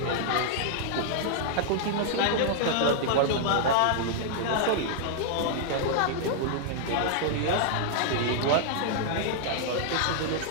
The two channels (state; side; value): different; both; correlation -0.01